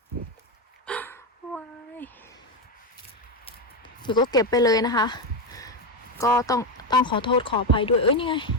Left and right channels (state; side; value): normal; both; correlation 0.10